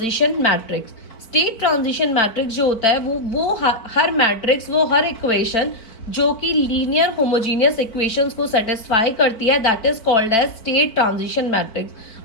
matrix. State transition matrix जो होता है वो हर मैट्रिक्स, वो हर इक्वेशन जो कि लीनियर होमोजीनियस इक्वेशंस को सेटिस्फाई करती है that is called as state transition matrix.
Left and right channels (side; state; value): right; late; 4.6 ms